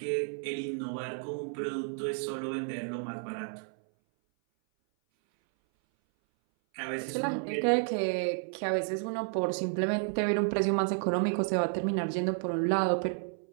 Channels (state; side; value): silent; left; 57 dB below the other